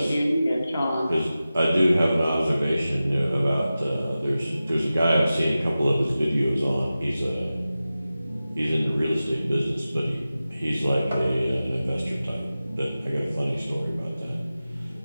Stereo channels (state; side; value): inverted; both; correlation -0.95